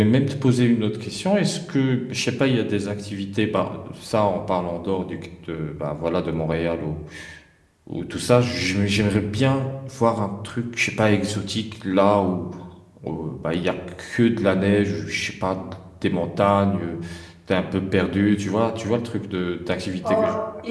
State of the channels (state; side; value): identical; both; correlation 1.00